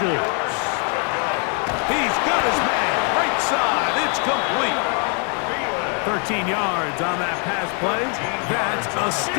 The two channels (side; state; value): right; quieter; 40.0 dB